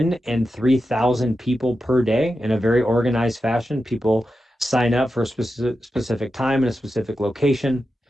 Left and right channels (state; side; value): normal; both; correlation 0.90